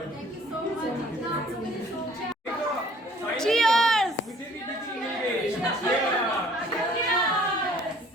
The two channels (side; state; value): both; normal; correlation 0.56